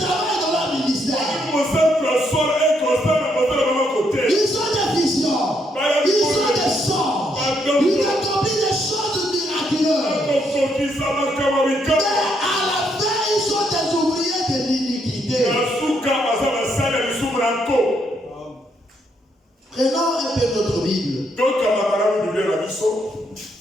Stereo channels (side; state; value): both; normal; correlation 0.75